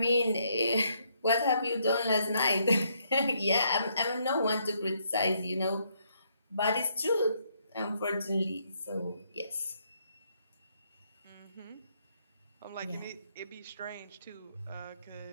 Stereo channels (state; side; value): inverted; both; correlation -0.73